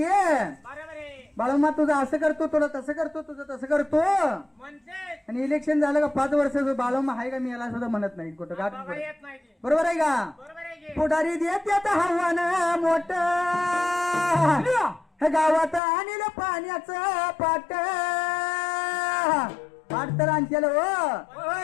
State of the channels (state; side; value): drops out; right; at 15.8 s